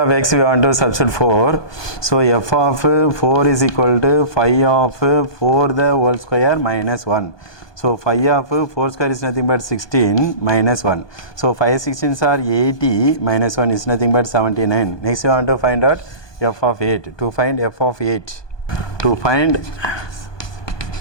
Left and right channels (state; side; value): late; right; 1.2 ms